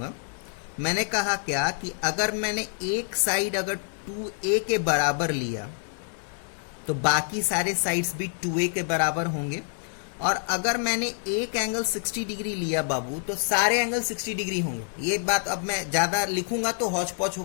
मैंने कहा क्या कि अगर मैंने एक साइड अगर 2a के बराबर लिया तो बाकी सारे साइड्स भी 2a के बराबर होंगे, और अगर मैंने एक एंगल 60 डिग्री लिया बाबू तो सारे एंगल 60 डिग्री होंगे। ये बात अब मैं ज्यादा लिखूंगा तो हौच पौच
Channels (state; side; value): silent; right; 60 dB below the other